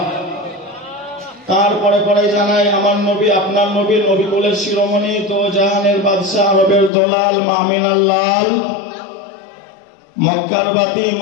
তারপরে পরে জানাই আমার নবী আপনার নবী নবী কুলের শিরোমণি তো জাহানের বাদশা আরবের দলাল মামিনার লাল মক্কার বাতি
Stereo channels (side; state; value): right; drops out; at 6.9 s